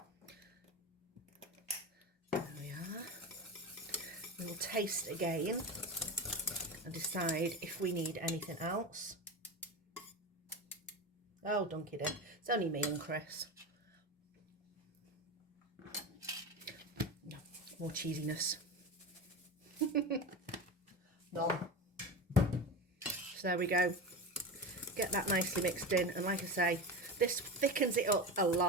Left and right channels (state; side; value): normal; both; correlation 0.24